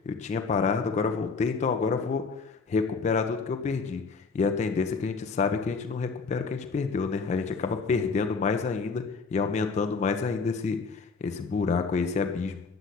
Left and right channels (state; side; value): quieter; right; 4.7 dB